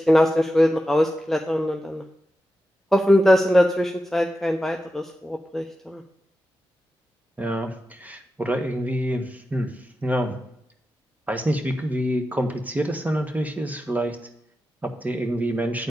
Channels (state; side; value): normal; both; correlation 0.91